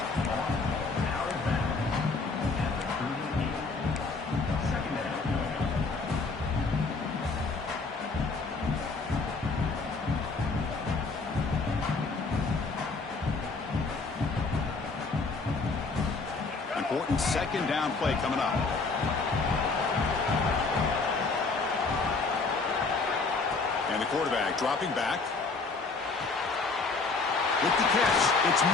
Important second down play coming up. And the quarterback dropping back. With the catch, it's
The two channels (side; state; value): right; quieter; 4.0 dB